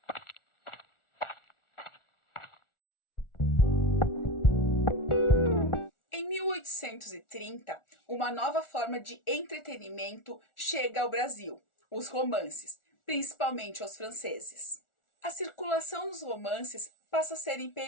Em 1830, uma nova forma de entretenimento chega ao Brasil, os romances, principalmente aos franceses. A circulação dos romances passa a ser em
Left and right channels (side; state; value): right; late; 1.4 ms